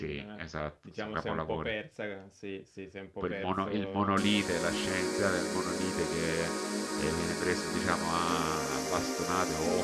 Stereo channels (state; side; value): identical; both; correlation 1.00